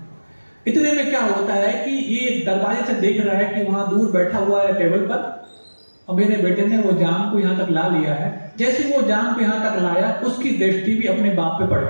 इतने में क्या होता है कि ये दरवाजे से देख रहा है कि वहां दूर बैठा हुआ है टेबल पर, और मेरे बेटे ने वो जाम को यहां तक ला लिया है। जैसे वो जाम को यहां तक लाया, उसकी दृष्टि भी अपने बाप पे पड़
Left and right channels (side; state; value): both; inverted; correlation -1.00